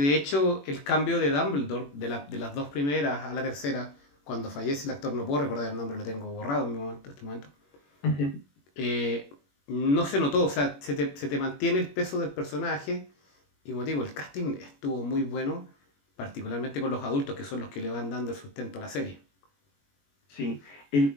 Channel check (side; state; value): right; late; 21 ms